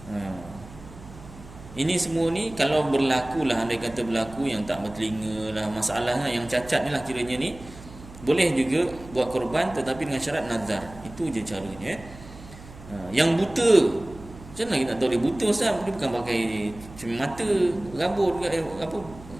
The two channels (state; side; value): noise; right; hum, 18 dB below the sound